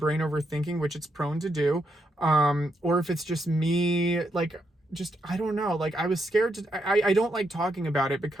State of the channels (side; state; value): both; normal; correlation 0.79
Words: overthinking, which it's prone to do, or if it's just me, like, just, I don't know. Like, I was scared I don't like talking about it,